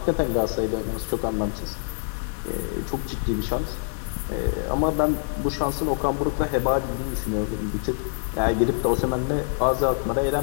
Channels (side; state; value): right; silent; digital silence